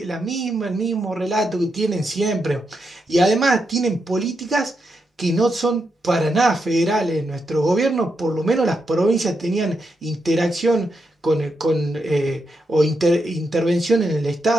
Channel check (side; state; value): both; normal; correlation 0.83